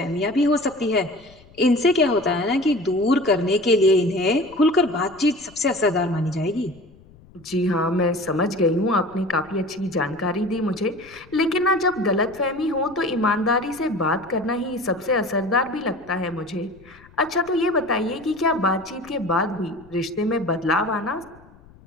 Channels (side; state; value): left; noise; rumble, 25 dB below the sound